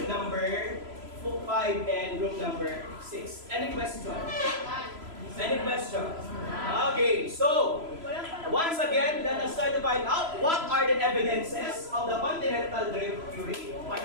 number 5 and group number 6. Any question? Any question? Okay, so once again, let us try to find out what are the evidences of the continental drift theory.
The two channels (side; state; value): left; late; 3.0 ms